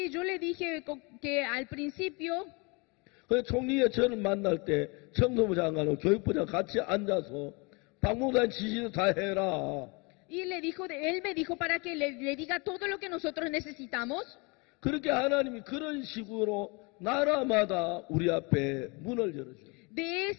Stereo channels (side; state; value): right; quieter; 29.7 dB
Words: yo le dije que al principio 그 총리의 저를 만날 때 청소부 장관하고 교육부 장관 같이 앉아서 박목사님 지시도 다 해라. Y él me dijo para que le diga todo lo que nosotros necesitamos. 그렇게 하나님이 그런 식으로 나라마다 우리 앞에 문을 열어줘요. De